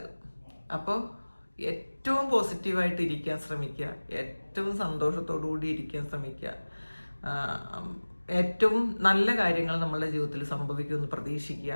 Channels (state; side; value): inverted; both; correlation -1.00